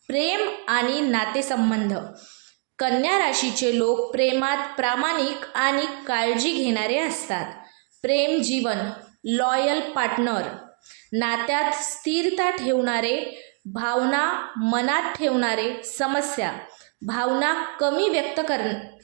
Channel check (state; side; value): quieter; left; 38.1 dB